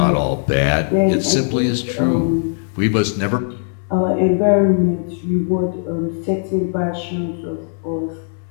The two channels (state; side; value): silent; right; 65 dB below the other